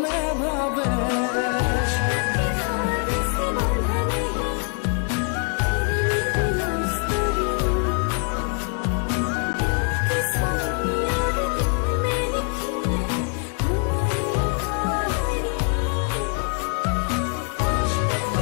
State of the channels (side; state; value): right; quieter; 38.7 dB